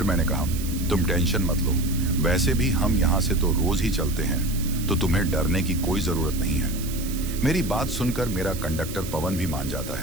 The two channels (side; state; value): right; noise; hiss, 11 dB below the sound